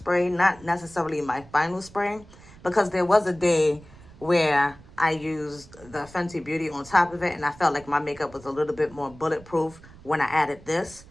not necessarily my final spray, because there was a day where I used the Fenty Beauty on top of it, and I felt like my makeup was a little bit more bulletproof when I added this.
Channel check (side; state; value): right; noise; rumble, 21 dB below the sound